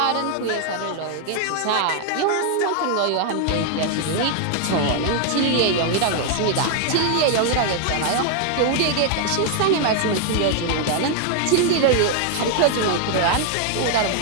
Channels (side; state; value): both; different; correlation 0.00